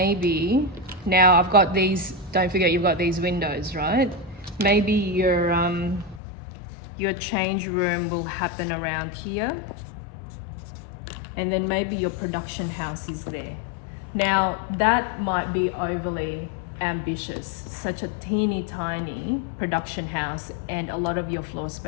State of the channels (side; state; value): right; drops out; at 6.2 s